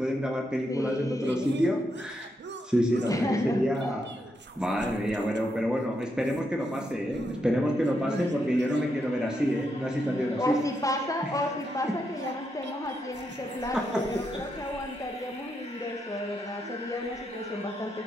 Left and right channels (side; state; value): both; normal; correlation 0.81